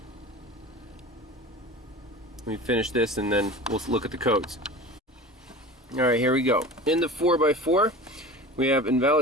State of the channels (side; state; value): both; normal; correlation 0.35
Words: me finish this and then we'll look at the codes. Alright, here we go. In the 4x4, we have